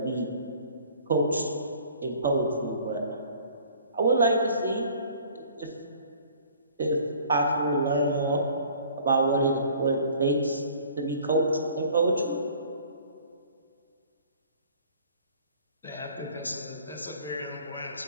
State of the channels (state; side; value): inverted; both; correlation -0.52